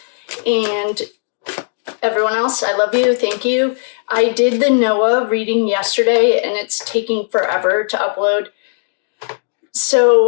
And everyone else, I love you. Thank you. I did the Noah reading yesterday, and it's taking forever to upload.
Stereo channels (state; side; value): silent; right; digital silence